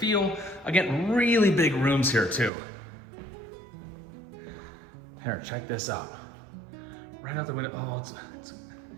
Again, really big rooms here too. Here, check this out. Right out the window, oh,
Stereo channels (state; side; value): drops out; left; at 2.5 s